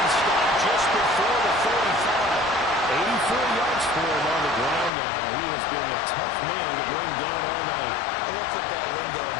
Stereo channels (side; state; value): right; drops out; at 4.9 s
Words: stopped just before the 45. 84 yards for him on the ground now. He has been a tough man to bring down all night. I love football lingo and